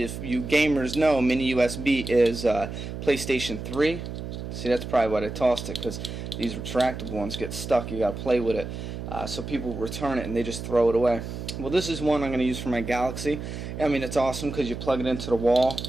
you gamers know, mini USB is PlayStation 3. See, that's probably why I tossed it, because these retractable ones get stuck. You gotta play with it, so people return it and they just throw it away. Well, this is one I'm going to use for my Galaxy. I mean, it's awesome because you plug it into the wall,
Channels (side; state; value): right; noise; hum, 7 dB below the sound